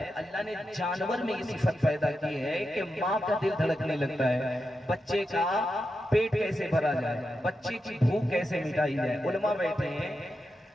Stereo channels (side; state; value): both; normal; correlation 0.88